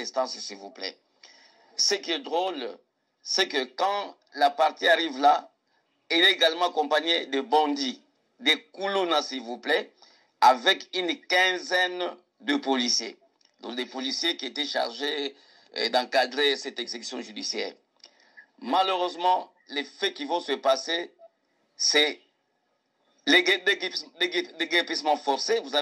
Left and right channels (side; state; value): both; identical; correlation 1.00